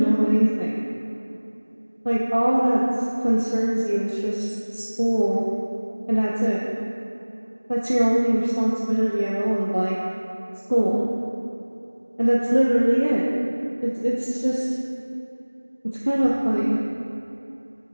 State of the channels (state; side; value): inverted; both; correlation -1.00